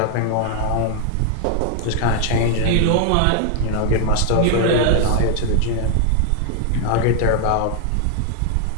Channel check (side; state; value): both; different; correlation 0.00